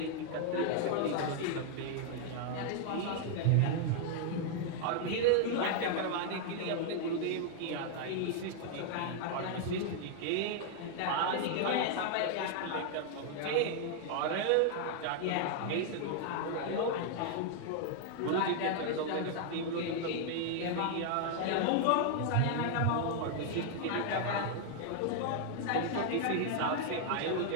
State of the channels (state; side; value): different; both; correlation 0.00